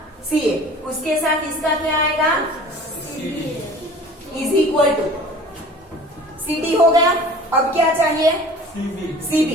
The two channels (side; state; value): both; normal; correlation 0.45